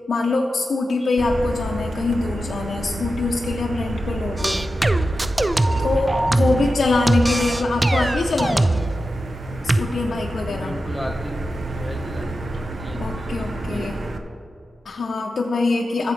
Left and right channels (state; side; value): normal; both; correlation 0.91